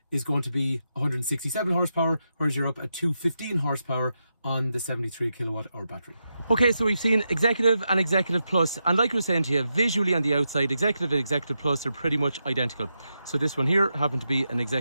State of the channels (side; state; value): both; inverted; correlation -0.86